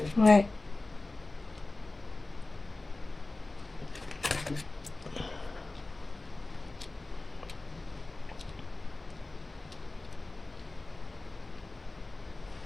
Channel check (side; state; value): right; quieter; 3.1 dB